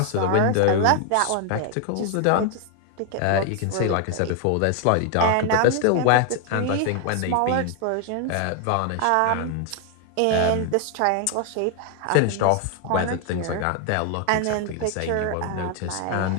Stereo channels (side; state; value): both; different; correlation 0.00